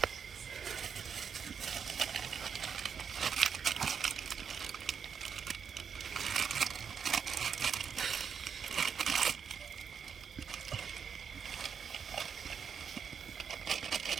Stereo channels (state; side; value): quieter; left; 6.9 dB